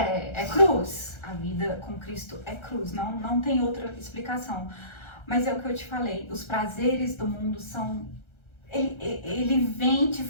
cruz. A vida com Cristo é cruz, não tem outra explicação. Mas é o que eu te falei, os prazeres do mundo são... Ele vem, te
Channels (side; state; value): right; late; 1.3 ms